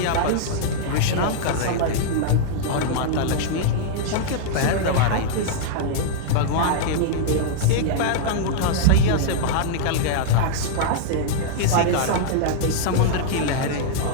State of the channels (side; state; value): both; different; correlation -0.02